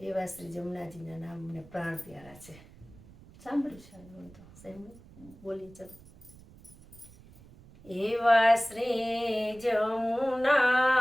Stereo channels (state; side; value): noise; right; rumble, 22 dB below the sound